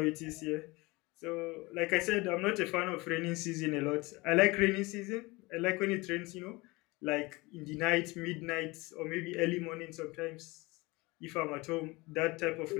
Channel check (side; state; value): right; quieter; 23.5 dB